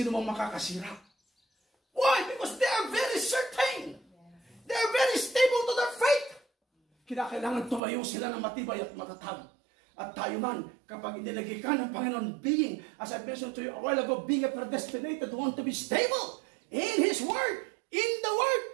mang makakasira. Why? Because they are very certain. They are very stable to their faith. Kinakailangan tumayo sila ng matibay at matatag. At tayo man, kapag inilagay ka ng Panginoon, being, as I mentioned to you a while ago, being a predestinated one to be stable in His Word, in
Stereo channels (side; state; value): left; drops out; at 7.8 s